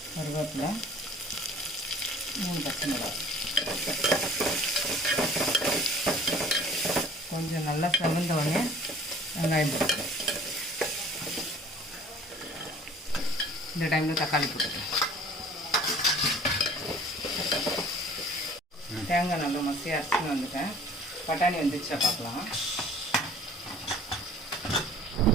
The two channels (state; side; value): normal; both; correlation 0.50